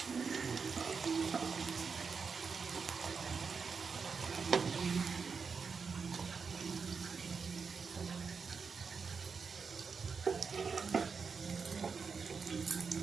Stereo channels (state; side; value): quieter; left; 5.4 dB